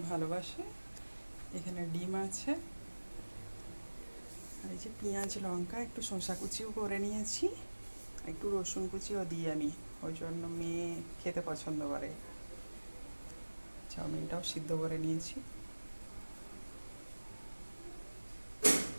ভালোবাসে। এখানে ডিম আছে, আর এই যে পেঁয়াজ লঙ্কা, একটু শসা কুচিও করে নিয়েছি, একটু রসুন কুচিও দিই আমি, ওই জন্য মেয়ে খেতে পছন্দ করে। চাউমিনটাও সিদ্ধ করে নিয়েছি।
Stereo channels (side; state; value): both; inverted; correlation -1.00